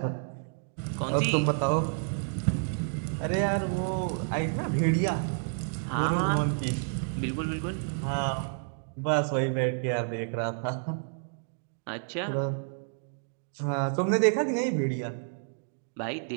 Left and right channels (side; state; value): left; silent; digital silence